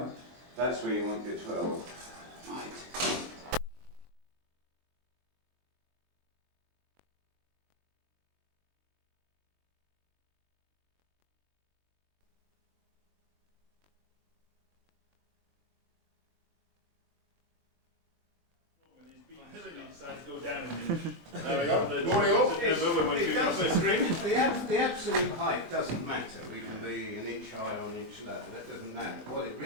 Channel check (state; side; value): late; left; 23 ms